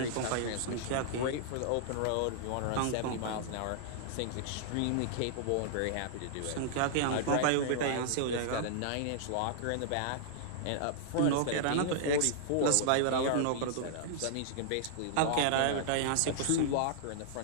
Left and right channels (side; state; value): both; different; correlation -0.01